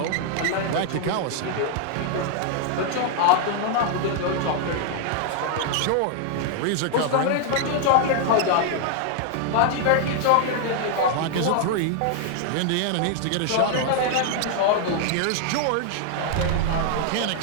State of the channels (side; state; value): both; different; correlation 0.00